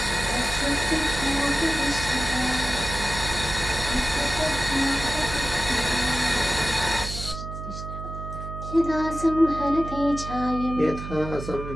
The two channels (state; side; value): noise; right; hum, 9 dB below the sound